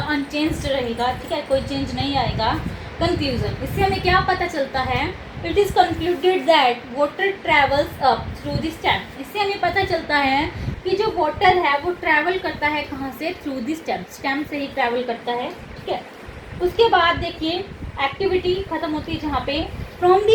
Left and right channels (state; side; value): identical; both; correlation 1.00